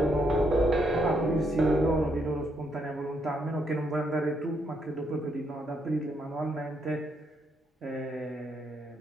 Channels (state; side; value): normal; both; correlation 0.76